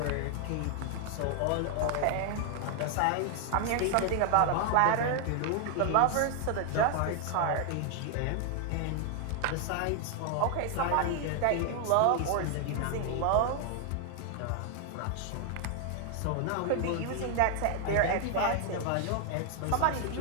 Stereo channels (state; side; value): different; both; correlation 0.00